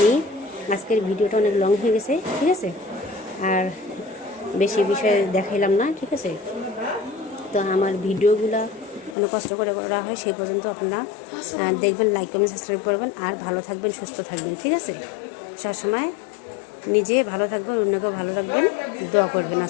আজকের ভিডিওটা অনেক লং হয়ে গেছে, ঠিক আছে। আর বেশি বিষয় দেখাইলাম না, ঠিক আছে। তো আমার ভিডিওগুলো অনেক কষ্ট করে করা হয়, সেই পর্যন্ত আপনারা দেখবেন, লাইক কমেন্ট সাবস্ক্রাইব করবেন, আর ভালো থাকবেন, সুস্থ থাকবেন, ঠিক আছে। সবসময় নিজে ভালো থাকবেন, অন্যকেও ভালো রাখবেন, দোয়া করবেন।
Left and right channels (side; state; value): right; drops out; at 9.2 s